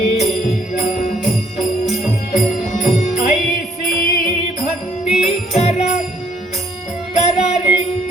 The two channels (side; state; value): both; normal; correlation 0.66